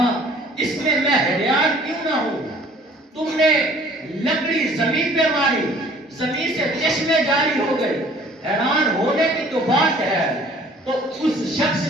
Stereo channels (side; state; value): both; normal; correlation 0.53